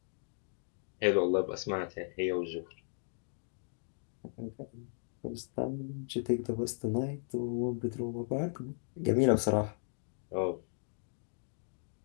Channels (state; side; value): silent; right; digital silence